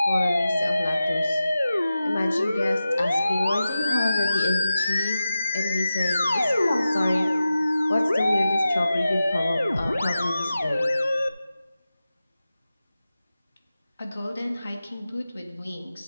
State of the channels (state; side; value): inverted; both; correlation -0.93